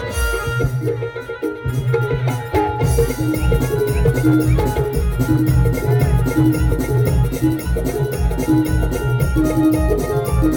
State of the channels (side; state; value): both; identical; correlation 1.00